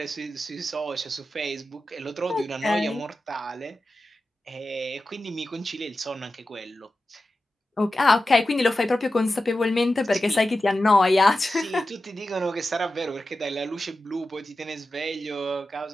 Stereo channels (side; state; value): both; normal; correlation 0.93